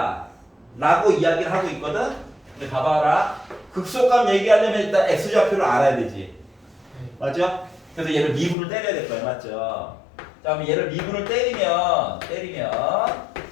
라고 이야기를 하고 있거든. 근데 봐봐라, 극소값 얘기하려면 일단 x좌표를 알아야 되지. 네. 맞죠? 그래서 얘를 미분을 때려야 될 거야. 맞죠? 자, 그럼 얘를 미분을 때리면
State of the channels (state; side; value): drops out; right; at 8.6 s